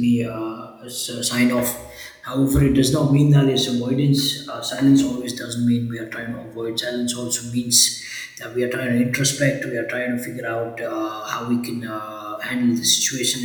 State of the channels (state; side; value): identical; both; correlation 1.00